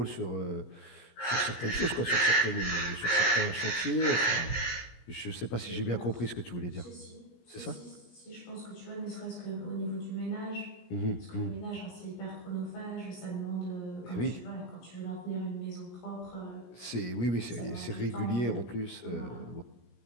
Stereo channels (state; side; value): late; right; 17 ms